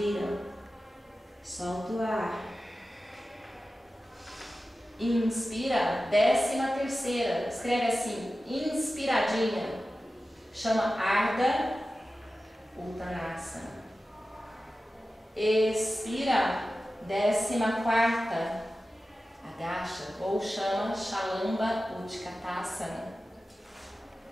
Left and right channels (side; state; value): both; normal; correlation 0.94